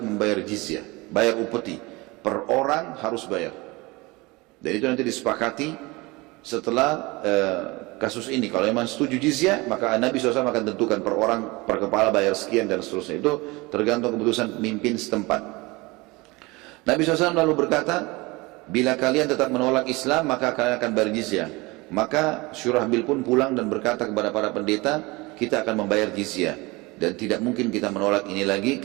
jizyah, bayar upeti, per orang harus bayar. Dan itu nanti disepakati setelah kasus ini. Kalau memang setuju jizyah, maka Nabi SAW akan tentukan per orang, per kepala bayar sekian dan seterusnya. Itu tergantung keputusan pemimpin setempat. Nabi SAW lalu berkata, bila kalian tetap menolak Islam, maka kalian akan bayar jizyah. Maka Syurahbil pun pulang dan berkata kepada para pendeta, kita akan membayar jizyah dan tidak mungkin kita menolak ini lagi,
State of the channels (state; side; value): quieter; left; 23.7 dB